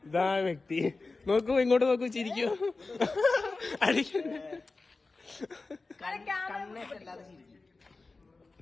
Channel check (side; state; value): right; quieter; 3.7 dB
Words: ഇതാ വ്യക്തി. നോക്കൂ, ഇങ്ങോട്ട് നോക്കൂ, ചിരിക്കൂ.